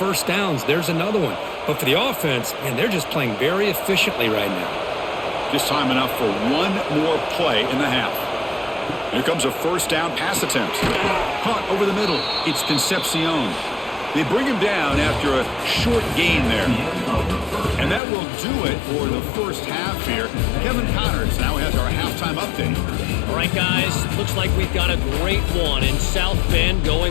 downs. There's another one. But for the offense, man, they're just playing very efficiently right now. Just time enough for one more play in the half. Here comes a 1st down pass attempt. Caught over the middle. It's Concepcion. They bring him down after a short gain there. And that will do it for the first half here. Kevin Connors now has our halftime update. All right, guys, looks like we've got a great one in South Bend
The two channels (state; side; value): drops out; right; at 18.0 s